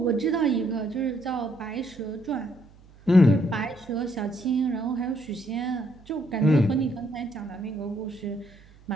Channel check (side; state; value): right; noise; hum, 25 dB below the sound